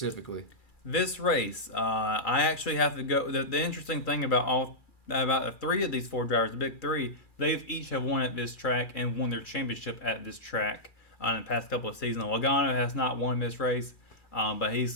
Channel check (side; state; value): right; late; 2.4 ms